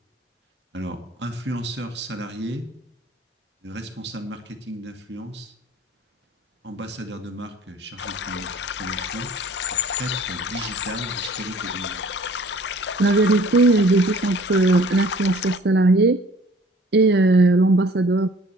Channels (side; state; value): both; normal; correlation 0.52